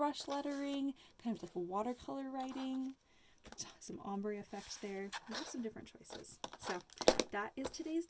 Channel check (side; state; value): both; identical; correlation 1.00